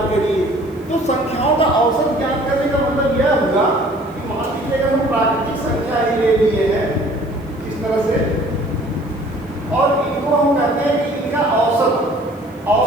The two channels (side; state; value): left; noise; hiss, 29 dB below the sound